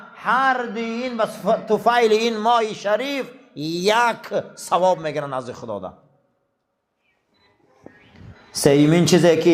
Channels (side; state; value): both; identical; correlation 1.00